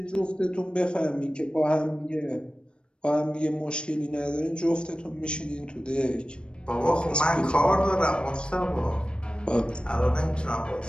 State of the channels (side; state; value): right; late; 0.054 ms